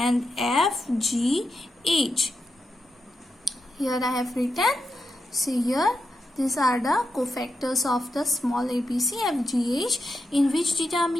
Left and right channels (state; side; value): normal; both; correlation 0.87